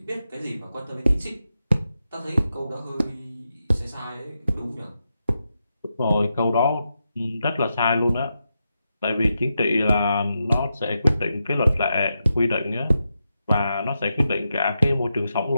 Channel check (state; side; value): inverted; both; correlation -0.87